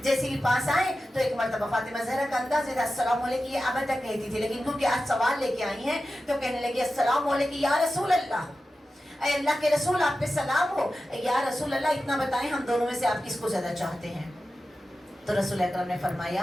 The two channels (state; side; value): normal; both; correlation 0.93